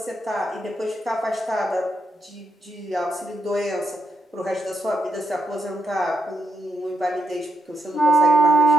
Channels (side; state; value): both; normal; correlation 0.83